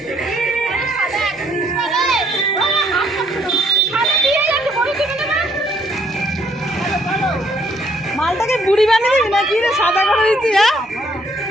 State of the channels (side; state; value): both; normal; correlation 0.67